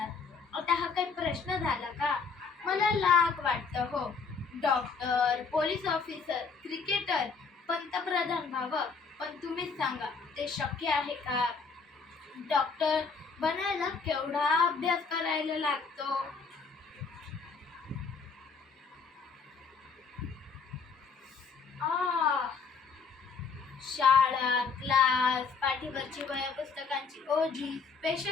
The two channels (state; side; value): quieter; right; 5.1 dB